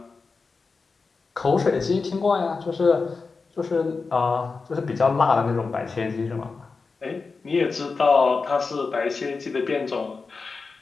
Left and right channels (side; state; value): right; quieter; 4.4 dB